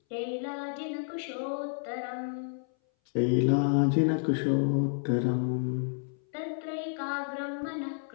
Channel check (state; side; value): silent; right; 58 dB below the other